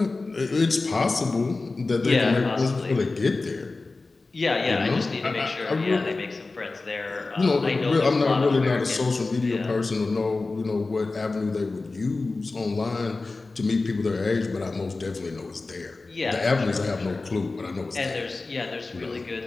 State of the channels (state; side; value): quieter; right; 3.6 dB